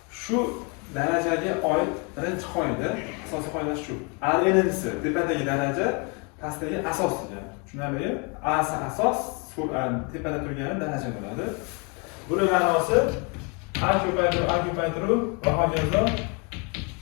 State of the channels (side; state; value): right; quieter; 32.4 dB